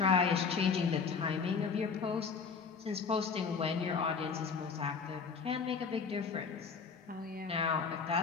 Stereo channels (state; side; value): quieter; right; 5.5 dB